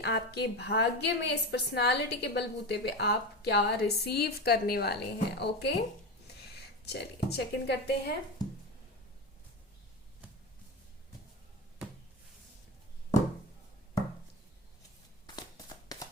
आपके भाग्य में इस पर्सनालिटी के बलबूते पे आप क्या रिसीव करने वाले हैं। ओके, चलिए चेक इन करते हैं।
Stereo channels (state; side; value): normal; both; correlation 0.22